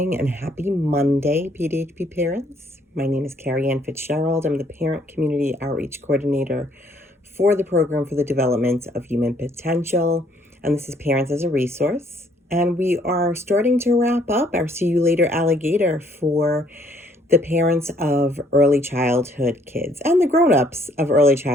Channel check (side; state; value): both; normal; correlation 0.65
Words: and happy Monday, PDHP parents. My name is Carrie Ann Fitzgerald. I'm the Parent Community Outreach Coordinator for the Program for the Development of Human Potential. And this is Parents as a Resource. And we are starting to wrap up our See You Later Alligator for the parents of early childhood kids and the grown-ups of early